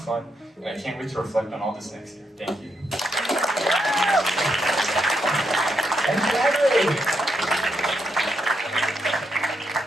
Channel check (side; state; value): both; normal; correlation 0.80